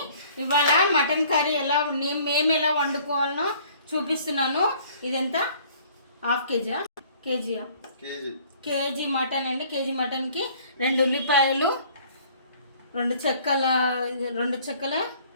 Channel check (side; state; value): both; inverted; correlation -0.55